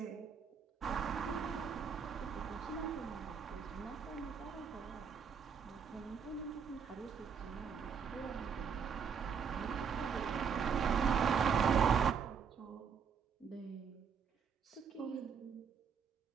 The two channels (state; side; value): quieter; left; 6.6 dB